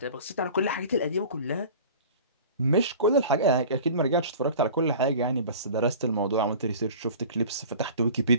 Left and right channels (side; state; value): both; inverted; correlation -0.41